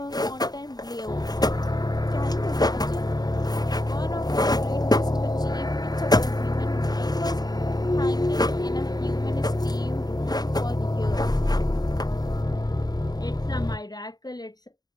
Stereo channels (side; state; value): right; late; 0.19 ms